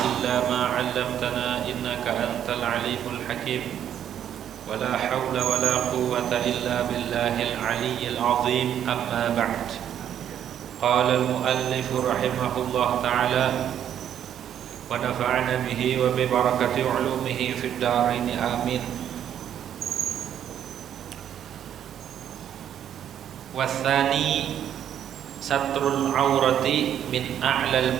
illa ma 'allamtana innaka antal alimul hakim. Wa la hawla wa la quwwata illa billahil 'aliyyil 'azim. Amma ba'd. Qala al-muallif rahimahullah ta'ala wa nafa'ana bihi wa bi barakati 'ulumihi fid dharain amin. Wathani satrul aurati min a'lal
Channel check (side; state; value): left; quieter; 9.9 dB